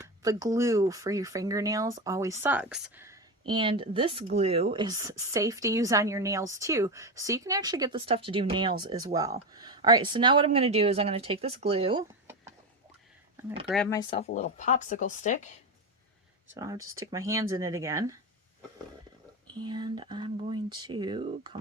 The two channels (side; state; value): both; normal; correlation 0.17